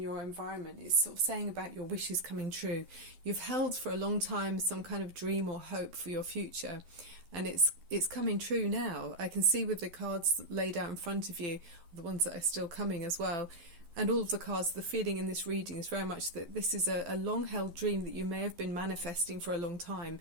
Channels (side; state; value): left; late; 11 ms